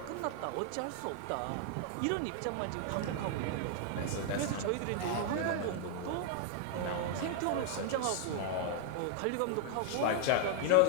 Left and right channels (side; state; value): both; different; correlation 0.00